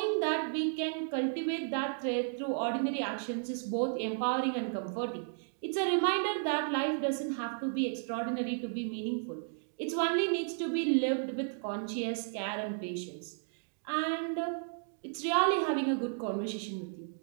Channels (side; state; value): left; silent; digital silence